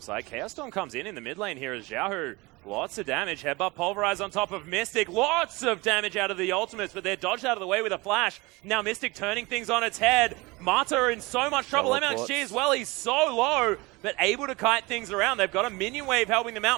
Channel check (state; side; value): quieter; left; 23.8 dB